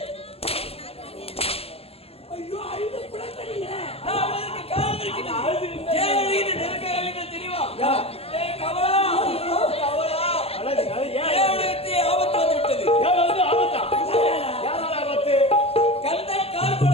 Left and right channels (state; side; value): late; right; 0.29 ms